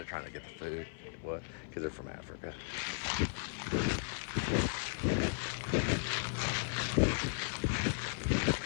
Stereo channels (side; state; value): right; silent; 54 dB below the other